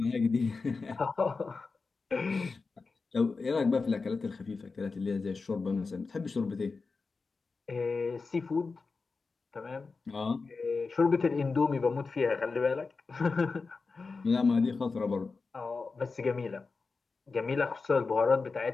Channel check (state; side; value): quieter; right; 4.3 dB